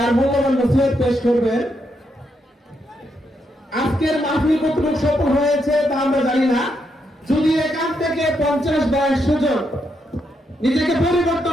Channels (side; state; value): both; normal; correlation 0.80